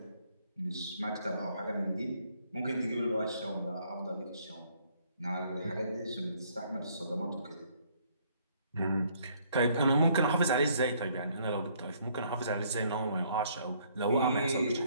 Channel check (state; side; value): inverted; both; correlation -0.65